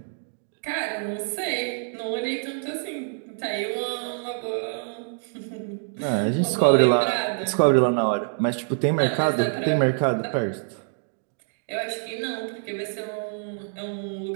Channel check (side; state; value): left; silent; digital silence